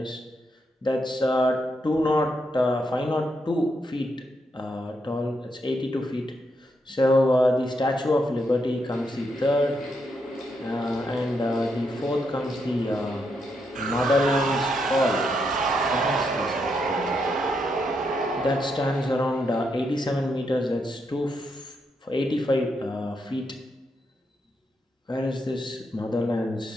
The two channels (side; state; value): both; normal; correlation 0.80